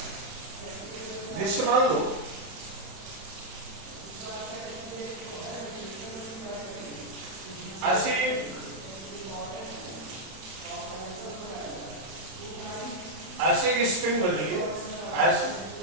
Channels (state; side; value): late; left; 31 ms